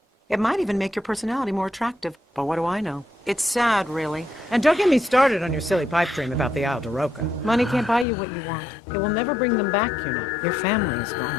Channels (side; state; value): right; drops out; at 8.1 s